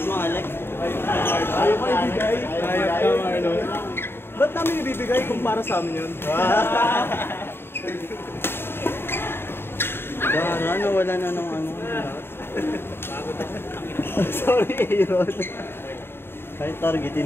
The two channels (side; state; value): right; late; 0.11 ms